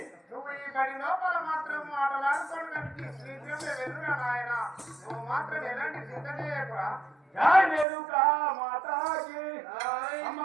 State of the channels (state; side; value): drops out; left; at 7.9 s